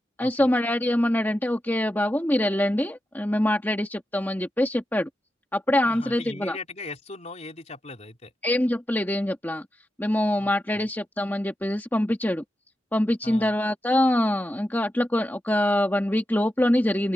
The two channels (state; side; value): normal; both; correlation 0.89